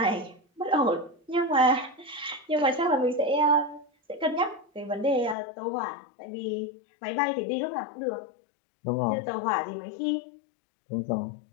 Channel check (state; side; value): drops out; right; at 5.4 s